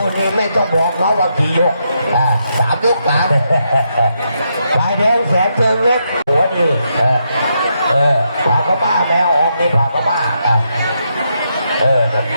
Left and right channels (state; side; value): inverted; both; correlation -0.80